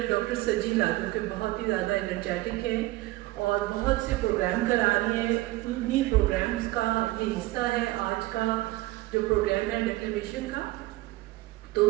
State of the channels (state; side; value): quieter; left; 18.6 dB